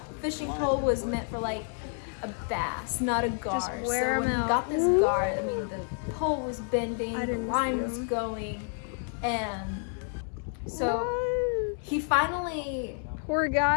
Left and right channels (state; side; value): silent; right; 58 dB below the other